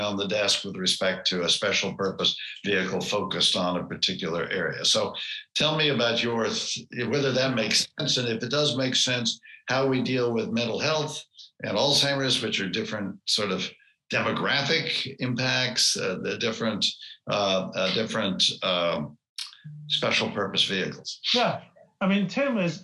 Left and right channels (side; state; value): both; identical; correlation 1.00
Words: the desk with respect to a special purpose vehicle focused on a particular area. So tell me about whether that makes sense, and if it does make sense, how we deal with mental health and Alzheimer's, which are different sort of demographic impacts, the different special purpose vehicles. Yeah, I mean, Tim